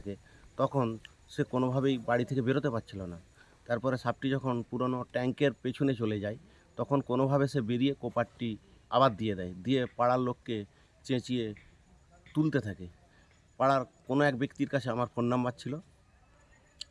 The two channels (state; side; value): identical; both; correlation 1.00